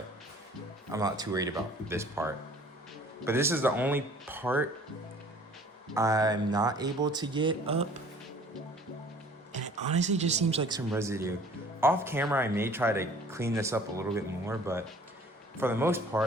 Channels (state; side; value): normal; both; correlation 0.51